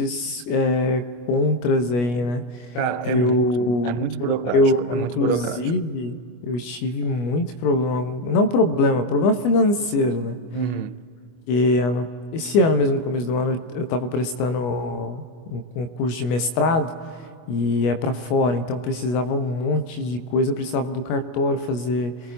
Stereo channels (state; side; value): late; right; 25 ms